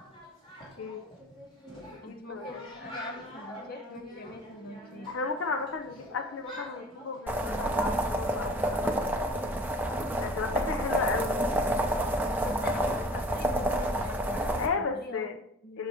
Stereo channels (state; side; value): normal; both; correlation 0.45